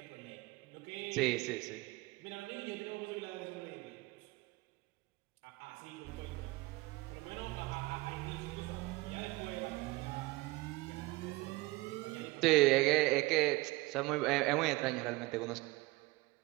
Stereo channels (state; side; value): quieter; left; 21.8 dB